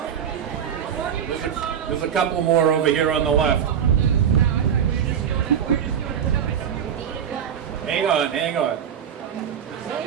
There's a couple more over here on the left. Hang on.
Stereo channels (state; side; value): quieter; left; 8.5 dB